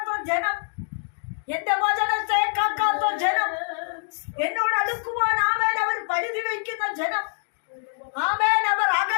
ജനം, എന്റെ വചനത്തെ കാക്കാത്ത ജനം, എന്നോട് അടുക്കുവാൻ അവർ പരിധി വയ്ക്കുന്ന ജനം, അവർ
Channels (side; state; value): right; silent; digital silence